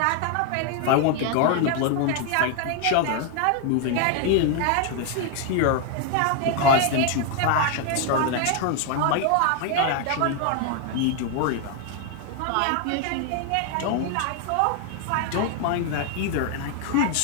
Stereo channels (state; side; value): different; both; correlation 0.00